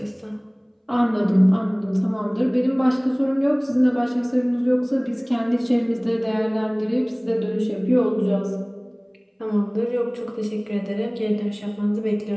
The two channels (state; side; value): identical; both; correlation 1.00